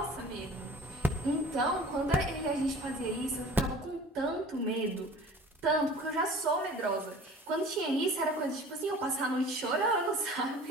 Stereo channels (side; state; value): both; normal; correlation 0.44